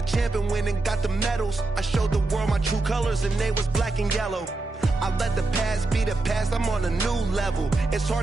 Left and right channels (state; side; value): quieter; left; 3.2 dB